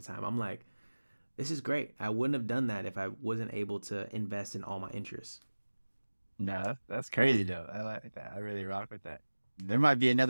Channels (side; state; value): both; inverted; correlation -1.00